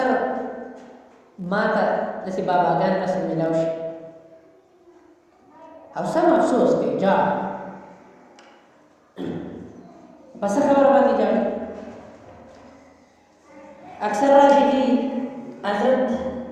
ما ته داسې باباګان رسم میلاو شي او سم افسوس کوي جاړ په څه خبره باندې جاړي اکثر راشي چې حضرت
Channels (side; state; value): both; identical; correlation 1.00